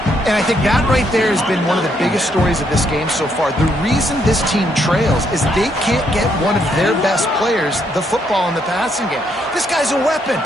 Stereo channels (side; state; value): both; normal; correlation 0.74